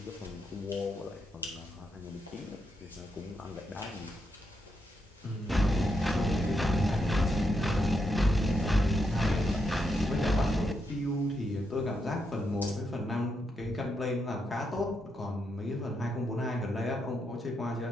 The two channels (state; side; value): normal; both; correlation 0.82